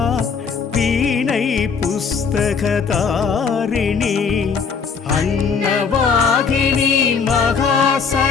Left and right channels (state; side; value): quieter; right; 5.7 dB